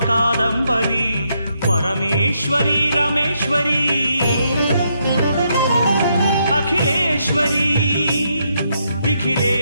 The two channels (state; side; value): inverted; both; correlation -0.77